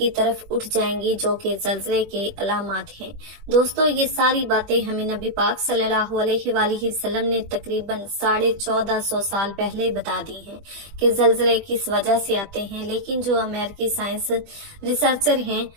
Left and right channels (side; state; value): left; late; 20 ms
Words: तरफ उठ जाएंगी, जो कि जल्जले के अलामात हैं। दोस्तों, ये सारी बातें हमें नबी पाक सल्लल्लाहु अलैहि वसल्लम ने तकरीबन 1450 साल पहले बता दी हैं कि जल्जले किस वजह से आते हैं, लेकिन जो अमेरिकी साइंस रिसर्चर हैं